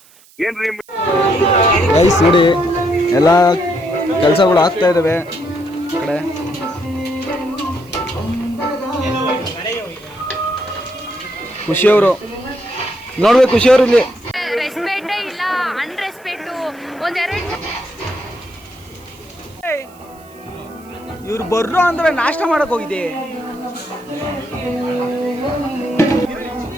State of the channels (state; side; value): noise; right; hiss, 27 dB below the sound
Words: ಏನ್ರಿ ಗೈಸ್ ನೋಡಿ, ಎಲ್ಲ ಕೆಲಸಗಳು ಆಗ್ತಾ ಇದಾವೆ ಕಡೆ. ಖುಷಿಯವರು ನೋಡ್ಬೇಕು, ಖುಷಿಯವರು ಇಲ್ಲಿ ರೆಸ್ಪೆಕ್ಟ್ ಇಲ್ಲ, ಅನ್ರೆಸ್ಪೆಕ್ಟ್ ಒಂದೆರಡು. ಇವ್ರು ಬರ್ರು ಅಂದ್ರೆ ನಾಷ್ಟ ಮಾಡಕ್ ಹೋಗಿದೆ.